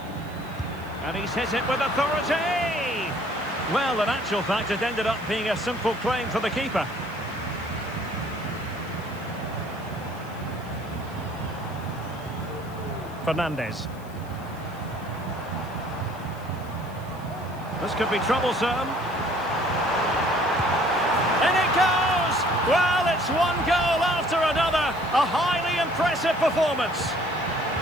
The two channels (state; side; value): noise; left; hiss, 24 dB below the sound